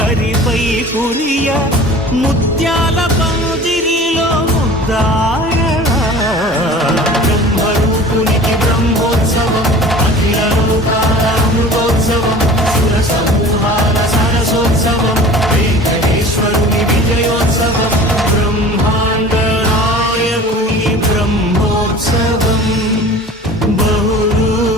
కురియ, ముత్యాల పందిరిలో ముద్దాయడా, బ్రహ్మరూపునికి బ్రహ్మోత్సవం, అఖిల లోకాల అమృతోత్సవం, సుర సమూహాల సరసోత్సవం, వెంకటేశ్వరుని విజయోత్సవం, బ్రహ్మాండ నాయకుని బ్రహ్మోత్సవం,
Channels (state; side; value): normal; both; correlation 0.42